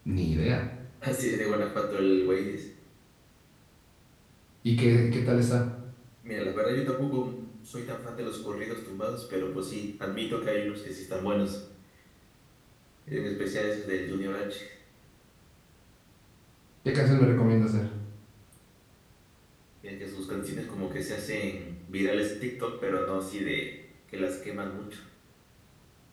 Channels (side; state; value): both; identical; correlation 1.00